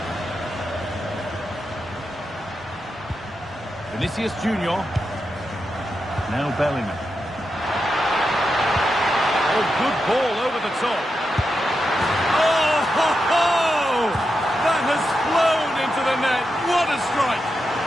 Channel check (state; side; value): normal; both; correlation 0.87